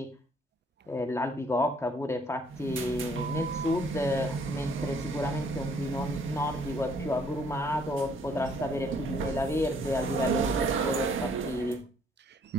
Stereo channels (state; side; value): normal; both; correlation 0.63